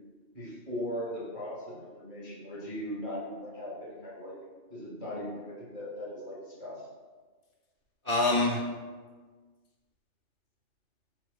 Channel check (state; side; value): late; left; 2.5 ms